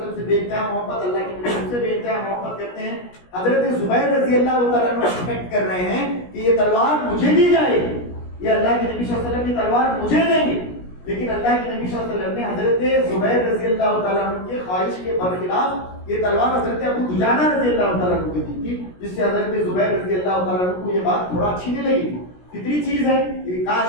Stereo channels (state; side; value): late; right; 17 ms